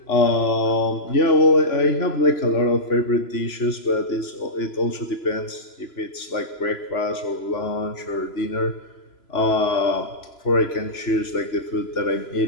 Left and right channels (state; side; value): late; right; 3.0 ms